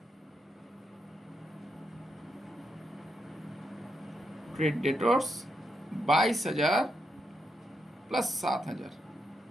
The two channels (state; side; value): normal; both; correlation 0.82